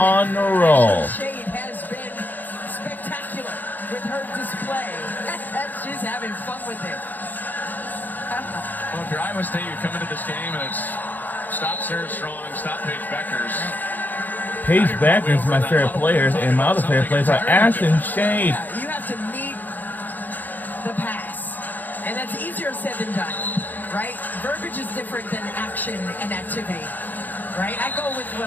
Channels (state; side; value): late; right; 0.085 ms